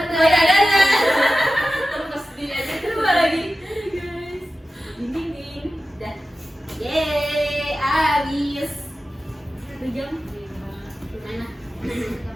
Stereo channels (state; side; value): normal; both; correlation 0.94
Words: Terus di aja Coba lagi. Guys. Ding. Dah. Yeay, habis 1 jam. Gimana?